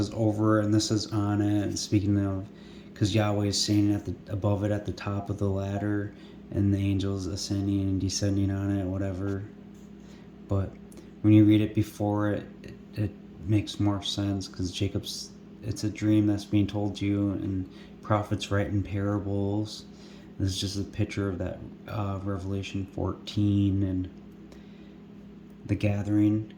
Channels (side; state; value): both; identical; correlation 1.00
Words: over and this is on it. And speaking of, because Yahweh is standing above it at the top of the ladder, and the angels ascending and descending on it, whatever. But when you read it before it makes more sense, because it's a dream that's being told to you, and prophets write in parables. This is just a picture of that Revelation 14 and the gathering,